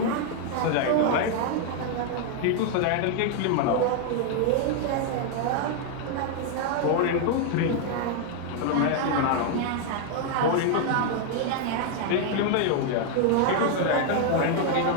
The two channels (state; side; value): different; both; correlation 0.00